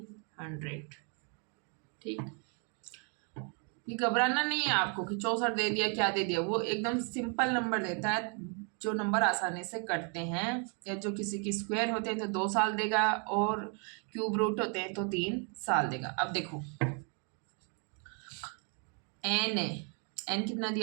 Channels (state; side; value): quieter; left; 38.6 dB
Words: 100। ठीक, ये घबराना नहीं है आपको कि 64 दे दिया क्या दे दिया, वो एकदम सिंपल नंबर देता है, जो नंबर आसानी से कटते हैं, या जो किसी की स्क्वायर होते हैं तो 2 साल देगा और क्यूब रूट होते हैं तो 3 साल देगा। अब देखो n है, n कितना